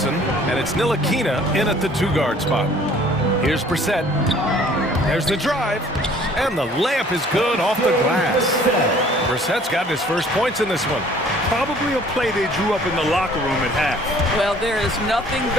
And it's Ntilikina in at the two-guard spot. Here's Brissett. There's the drive. And the layup is good off the glass. Brissett's gotten his first points in this one. Probably a play they drew up in the locker room at half. Well, there is nothing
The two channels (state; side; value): normal; both; correlation 0.55